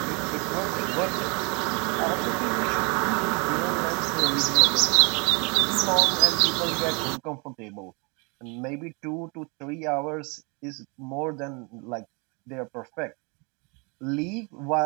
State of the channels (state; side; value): quieter; left; 31.6 dB